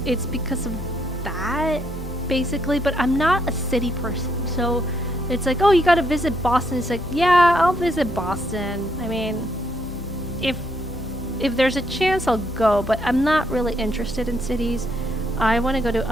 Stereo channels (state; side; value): normal; both; correlation 0.74